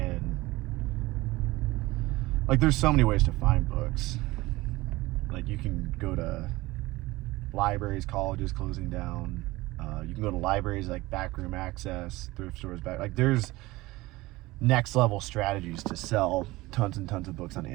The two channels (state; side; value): quieter; left; 20.0 dB